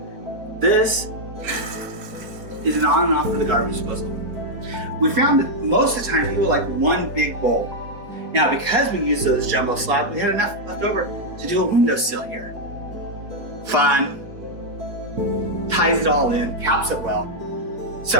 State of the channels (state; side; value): late; left; 4.4 ms